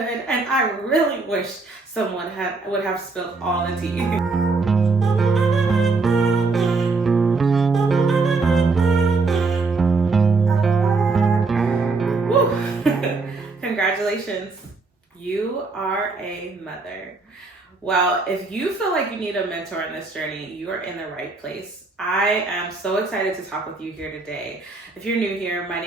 and I really wish someone would have spilled all the tea. Congratulations, you are a mother. Well, if you feel like you need a mentor in this journey, you are in the right place. I am so excited to talk with you here today. If you're new here, my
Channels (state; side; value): quieter; left; 3.9 dB